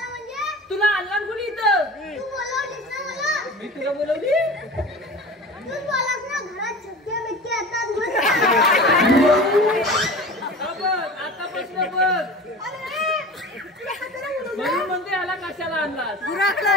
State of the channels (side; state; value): both; normal; correlation 0.35